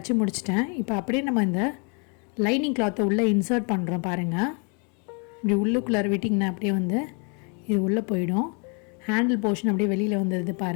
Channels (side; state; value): right; quieter; 36.4 dB